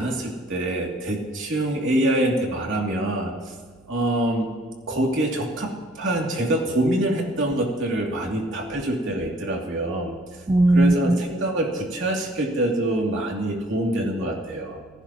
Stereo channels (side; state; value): right; noise; hum, 28 dB below the sound